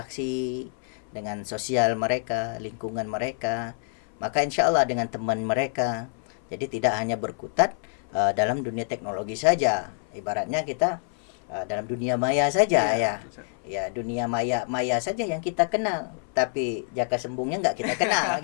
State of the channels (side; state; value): right; silent; 57 dB below the other